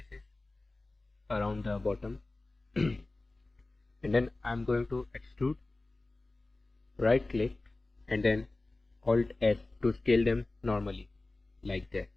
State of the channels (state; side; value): quieter; right; 3.1 dB